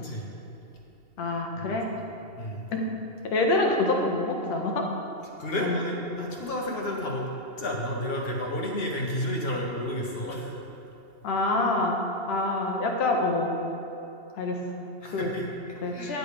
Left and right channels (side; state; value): right; late; 2.8 ms